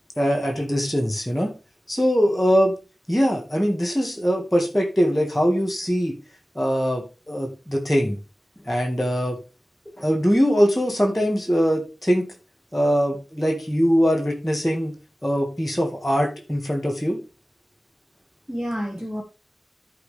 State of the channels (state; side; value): normal; both; correlation 0.96